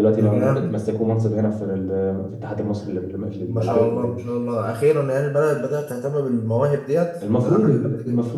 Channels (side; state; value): both; identical; correlation 1.00